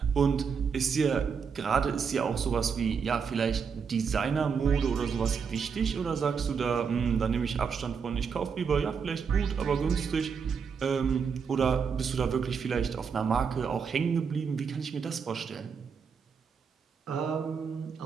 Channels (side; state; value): left; quieter; 6.2 dB